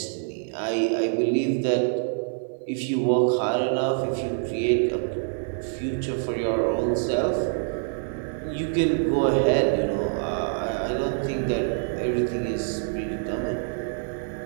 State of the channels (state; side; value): silent; left; digital silence